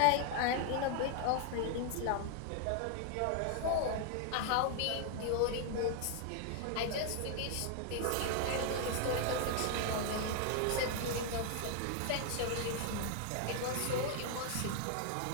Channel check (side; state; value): both; different; correlation 0.00